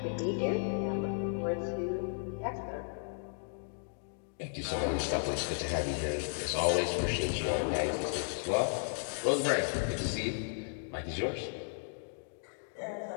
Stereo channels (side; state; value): right; silent; digital silence